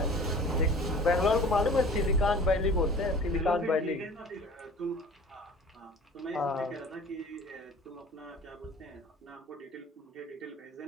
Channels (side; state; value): both; normal; correlation 0.44